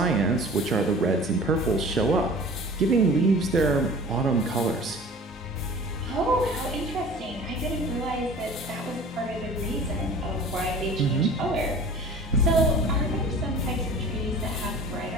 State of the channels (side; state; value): both; normal; correlation 0.43